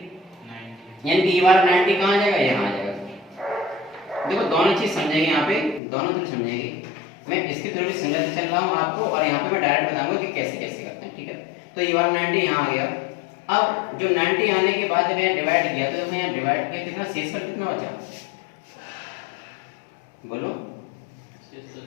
यानी कि ये वाला 90 कहाँ आ जाएगा, यहाँ आ जाएगा। देखो दोनों चीज समझेंगे, यहाँ पे दोनों चीज समझेंगे। मैं इसकी थोड़ी समझा चल रहा हूँ आपको, और यहाँ पे मैं डायरेक्ट बताऊंगा कि कैसे कैसे करते हैं। ठीक है, तो ये वाला 90 यहाँ आ गया। अब जो 90 आने के बाद जब यहाँ डिवाइड किया, तो यहाँ डिवाइड किया, कितना शेषफल कितना बचा, बोलो।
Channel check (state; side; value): drops out; right; at 5.8 s